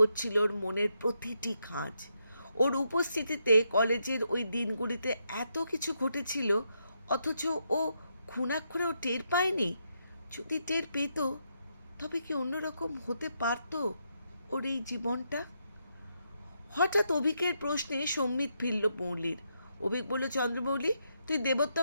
ওর মনের প্রতিটি খাঁজ। ওর উপস্থিতিতে কলেজের ওই দিনগুলিতে এত কিছু ঘটেছিল, অথচ ও খুনাক্ষরেও টের পায়নি। যদি টের পেত, তবে কি অন্যরকম হতে পারত ওর এই জীবনটা? হঠাৎ অভিকের প্রশ্নে সম্মিত ফিরল মৌলির। অভিক বলল, চন্দ্রমৌলি তুই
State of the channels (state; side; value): inverted; both; correlation -0.80